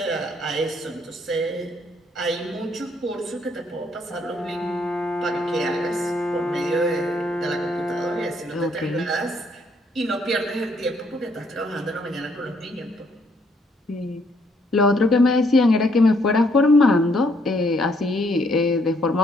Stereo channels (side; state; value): both; normal; correlation 0.69